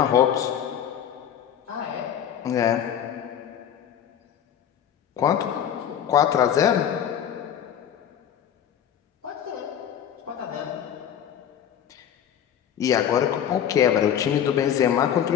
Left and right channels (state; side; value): quieter; right; 9.5 dB